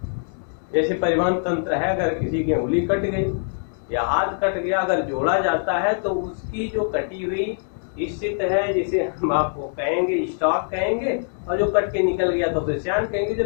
जैसे परिवहन तंत्र है, अगर किसी की उंगली कट गई या हाथ कट गया, अगर जोड़ा जाता है तो उसकी जो कटी हुई स्थिति है, जिसे हम आपको कहेंगे स्टॉक कहेंगे, और जो कट के निकल गया तो उसे श्यान कहेंगे।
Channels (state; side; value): silent; right; 63 dB below the other